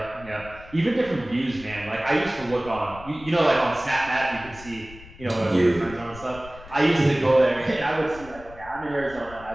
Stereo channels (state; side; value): noise; left; rumble, 18 dB below the sound